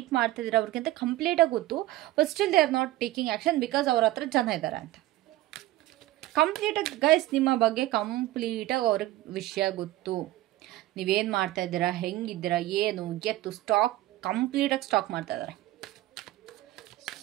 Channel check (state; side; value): quieter; left; 16.3 dB